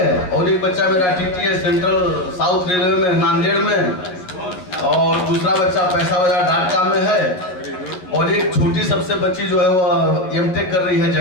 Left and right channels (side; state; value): right; late; 11 ms